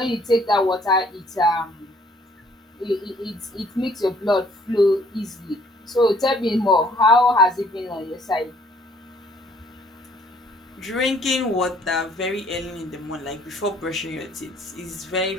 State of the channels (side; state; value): both; normal; correlation 0.61